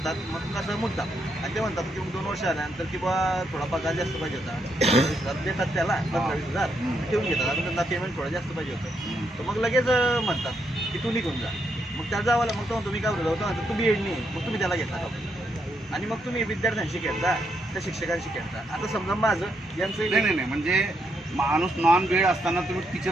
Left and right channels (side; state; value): both; normal; correlation 0.78